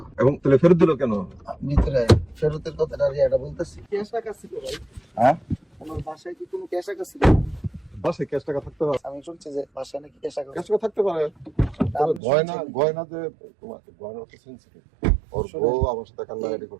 এবং তাহলে ফেরত দিল কেন? ভিতরে ফেরতের কথাটা এটা বলতেছি। ক্যাশ টাকা ছিল ভাই? হ্যাঁ, আমার বাসায় কি কোনো ক্যাশ টাকা ছিল? বাসায় ক্যাশ টাকা থাকতে পারে, আমি শুনছি যে বাসায় নাকি ক্যাশ টাকা। ক্যাশ টাকা থাকতে পারে। তবে আপনি গয়না শুনছেন? গয়না যে তোমাকে গয়না তো সেন্সিটিভ। ওর বউ আমার সাথে কান্নাকাটি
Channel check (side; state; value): left; drops out; at 12.2 s